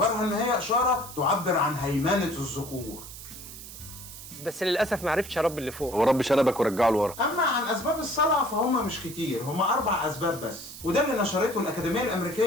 ان هي اشارة تعبر عن هيمنة الذكور. بس للاسف ما عرفتش اربي اللي فوق. هو رب شنبك ورجعه لورا. اما عن اسباب الصلع فهم مش كتير، هم 4 اسباب بس. وده اللي نشرته الأكاديمية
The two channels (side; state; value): right; noise; hiss, 13 dB below the sound